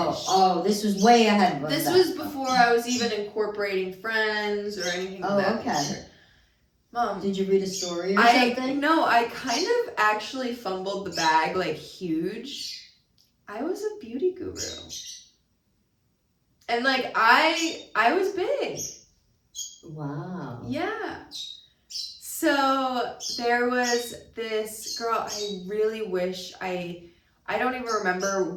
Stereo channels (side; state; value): both; identical; correlation 1.00